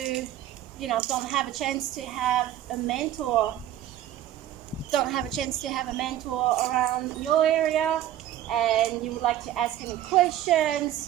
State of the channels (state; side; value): quieter; left; 12.3 dB